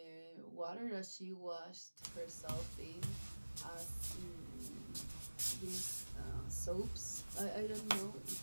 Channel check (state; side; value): inverted; both; correlation -1.00